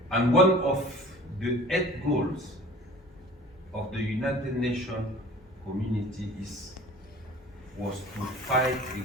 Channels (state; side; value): normal; both; correlation 0.45